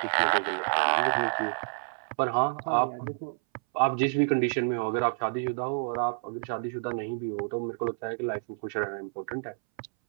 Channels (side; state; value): left; silent; 59 dB below the other